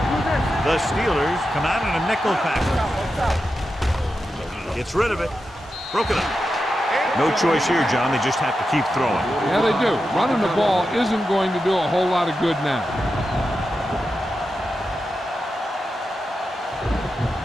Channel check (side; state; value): both; normal; correlation 0.89